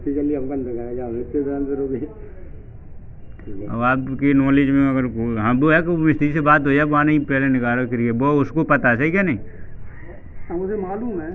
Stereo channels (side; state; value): both; identical; correlation 1.00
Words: जल्दी हम कंध करें जाओ इतने दिन से रुके अब आपकी नॉलेज में अगर हाँ वो है कि मिस्त्री से बात हो जाए वहाँ नहीं पहले निकालो करिए वो उसको पता है सही क्या नहीं? हाँ, मुझे मालूम है।